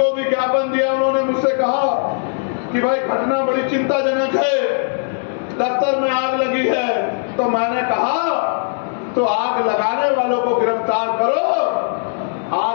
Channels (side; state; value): right; silent; digital silence